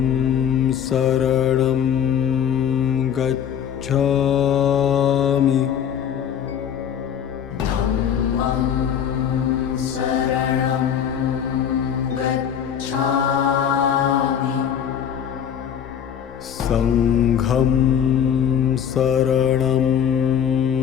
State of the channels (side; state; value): right; quieter; 8.6 dB